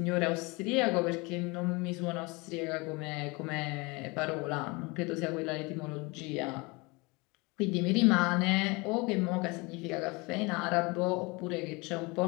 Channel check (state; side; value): quieter; right; 26.4 dB